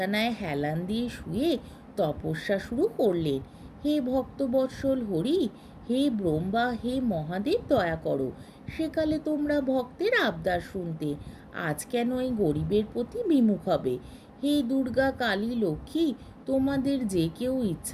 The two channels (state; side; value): identical; both; correlation 1.00